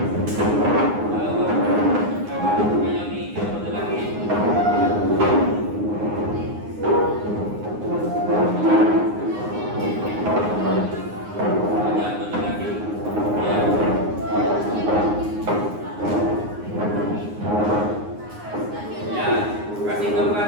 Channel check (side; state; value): left; late; 9.6 ms